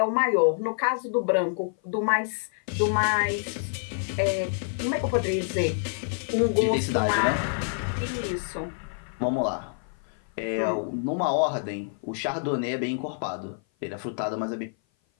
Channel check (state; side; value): silent; right; 56 dB below the other